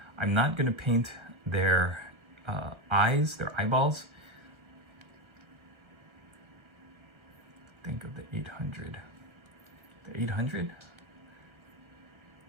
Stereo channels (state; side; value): late; left; 1.4 ms